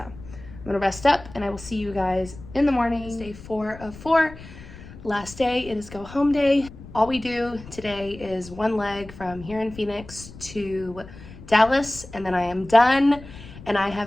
gonna rest up, and I will see you guys in the morning. It's day 4 of 4. Last day, it is go home day. All we do today is 1 leg from here in Phoenix to Dallas, and then I am done. And I have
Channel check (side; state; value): left; noise; rumble, 16 dB below the sound